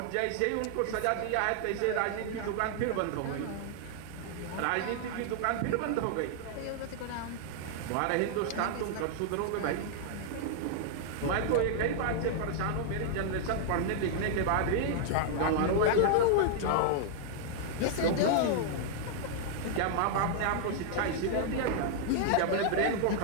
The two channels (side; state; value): both; different; correlation -0.01